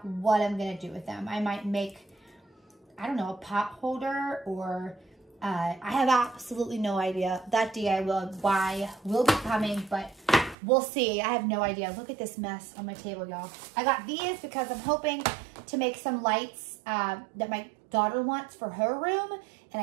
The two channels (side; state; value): left; drops out; at 10.6 s